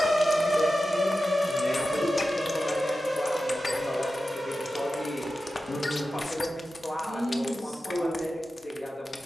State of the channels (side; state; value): both; normal; correlation 0.93